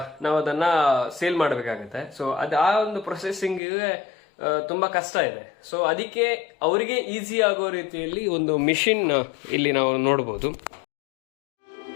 ನಾವು ಅದನ್ನ ಸೇಲ್ ಮಾಡಬೇಕಾಗುತ್ತೆ. ಸೊ ಆ ಒಂದು ಪ್ರೊಸೆಸಿಂಗಿಗೆ ತುಂಬಾ ಕಷ್ಟ ಇದೆ. ಸೊ ಅದಕ್ಕೆ ಅವರಿಗೆ ಈಸಿ ಆಗೋ ರೀತಿಯಲ್ಲಿ ಒಂದು ಮಿಷಿನ್ ಇಲ್ಲಿ ನಾವು ನೋಡಬಹುದು.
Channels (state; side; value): drops out; right; at 3.6 s